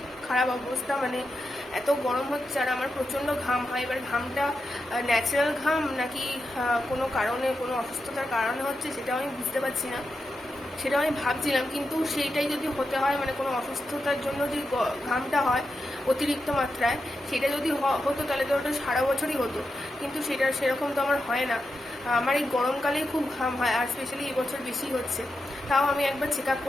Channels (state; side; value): normal; both; correlation 0.88